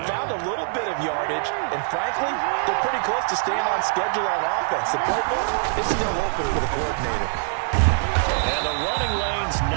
found a little bit of yardage, and frankly, they're pretty close to staying on schedule on offense. The playbook is still open for the coordinator. And the running lane's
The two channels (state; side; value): silent; left; 60 dB below the other